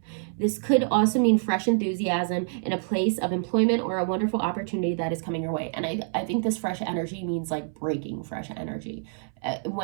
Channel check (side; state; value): left; silent; 60 dB below the other